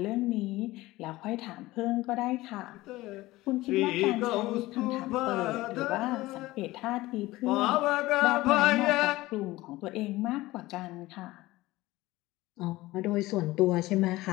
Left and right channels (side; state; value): right; quieter; 18.5 dB